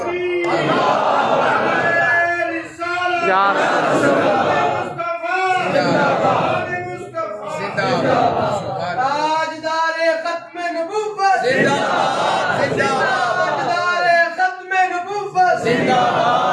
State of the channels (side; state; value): both; identical; correlation 1.00